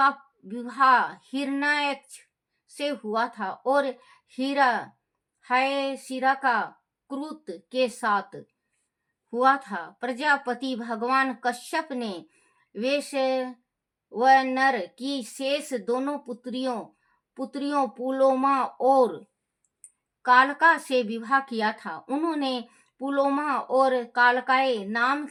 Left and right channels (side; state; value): both; identical; correlation 1.00